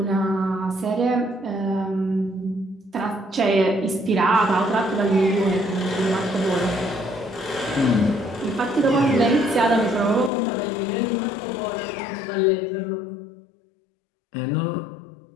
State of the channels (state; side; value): drops out; right; at 10.3 s